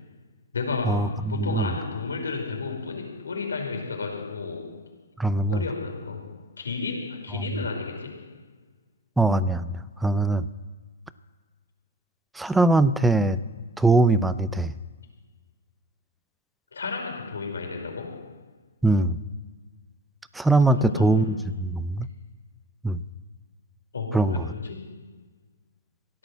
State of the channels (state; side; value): normal; both; correlation 0.56